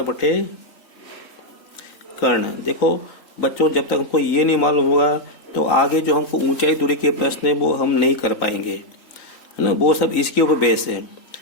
बटे कर्ण। देखो बच्चों, जब तक हमको ये नहीं मालूम होगा तो आगे जो हमको ऊंचाई दूरी के प्रश्न है वो हम नहीं कर पाएंगे, है ना। वो सब इसके ऊपर बेस है।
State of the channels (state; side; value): late; right; 3.9 ms